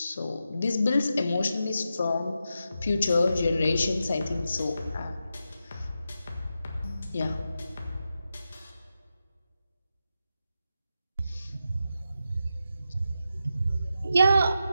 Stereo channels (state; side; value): inverted; both; correlation -0.88